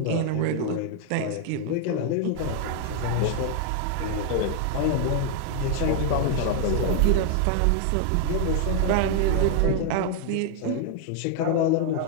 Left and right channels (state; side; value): different; both; correlation 0.00